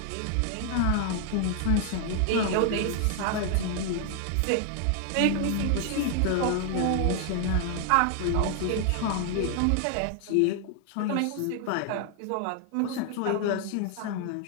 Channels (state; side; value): different; both; correlation 0.00